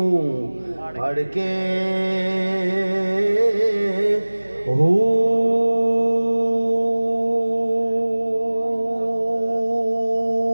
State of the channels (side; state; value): both; inverted; correlation -1.00